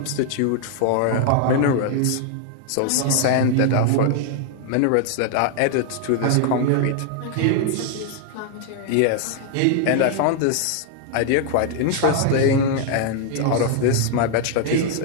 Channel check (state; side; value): different; both; correlation 0.00